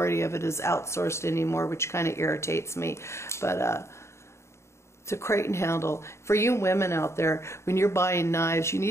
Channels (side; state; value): right; late; 0.13 ms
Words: of it is outsourced anymore, which kind of irritates me. But it's a crate and handle. For you women out there, when you're buying knives, you